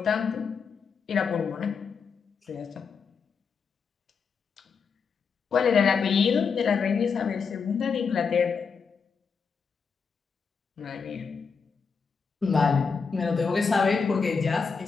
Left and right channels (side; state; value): right; quieter; 5.6 dB